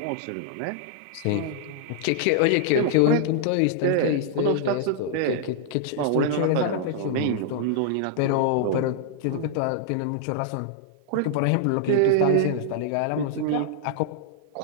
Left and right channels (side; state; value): both; different; correlation -0.01